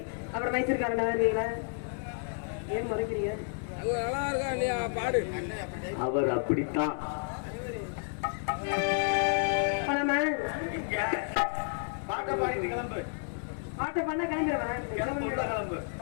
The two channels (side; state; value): right; silent; 57 dB below the other